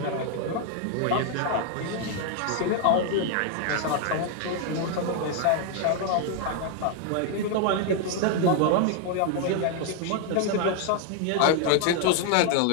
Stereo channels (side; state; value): both; different; correlation 0.00